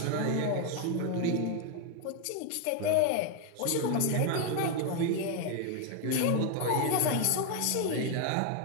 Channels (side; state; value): both; different; correlation 0.01